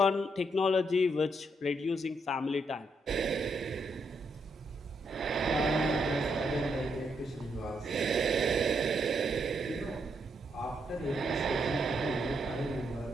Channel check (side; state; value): both; normal; correlation 0.78